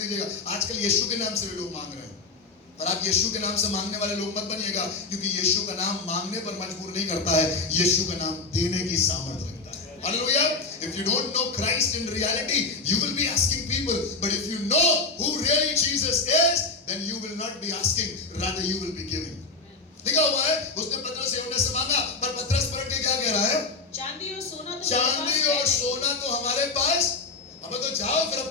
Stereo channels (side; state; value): right; quieter; 3.9 dB